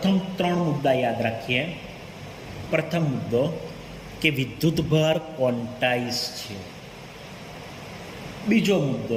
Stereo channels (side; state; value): both; identical; correlation 1.00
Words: ત્રણ મુદ્દા યાદ રાખીએ. પ્રથમ મુદ્દો કે વિદ્યુતભાર ક્વોન્ટાઇઝ છે. બીજો